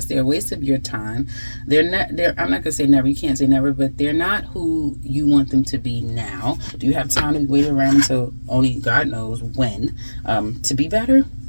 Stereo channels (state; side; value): inverted; both; correlation -1.00